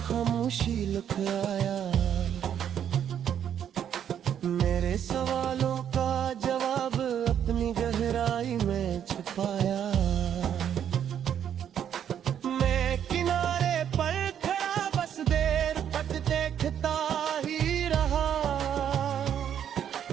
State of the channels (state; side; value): quieter; left; 9.2 dB